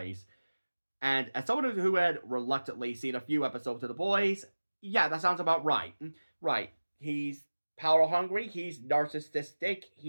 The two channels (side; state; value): both; inverted; correlation -1.00